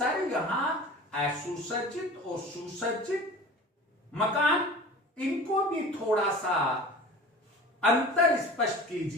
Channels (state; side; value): normal; both; correlation 0.39